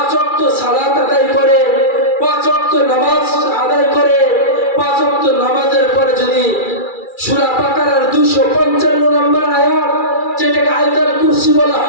ওয়াক্ত সালাত আদায় করে, 5 ওয়াক্ত নামাজ আদায় করে, 5 ওয়াক্ত নামাজের পরে যদি সূরা বাকারার 255 নম্বর আয়াত, যেটাকে আয়াতুল কুরসি বলা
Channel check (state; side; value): late; right; 2.3 ms